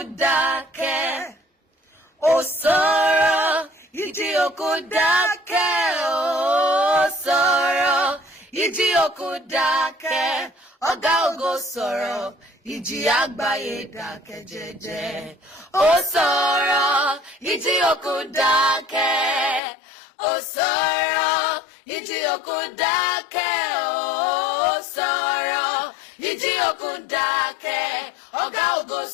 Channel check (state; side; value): drops out; right; at 19.6 s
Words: dákẹ́. Sọrọ, ìjì òkun dákẹ́. Sọrọ, ìjì òkun dákẹ́. Ọ̀gá ògo sọ̀rọ̀, ìjì àgbáyé dákẹ́ jẹ́jẹ́. Sọ̀rọ̀, ìjì òkun dákẹ́. Sọ̀rọ̀, ìjì òkun dákẹ́. Sọ̀rọ̀, ìjì òkun dákẹ́. Ọ̀gá ògo